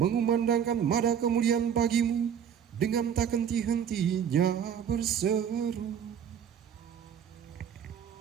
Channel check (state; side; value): quieter; left; 8.4 dB